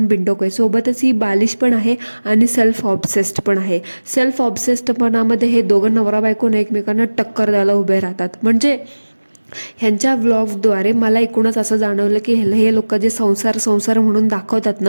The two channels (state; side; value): inverted; both; correlation -1.00